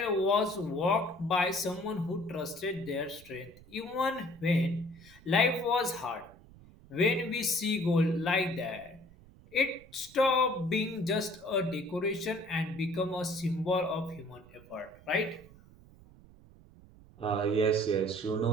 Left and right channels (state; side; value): noise; right; rumble, 23 dB below the sound